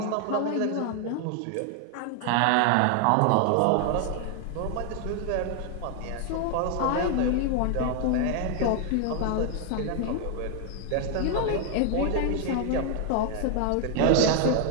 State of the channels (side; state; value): both; different; correlation 0.00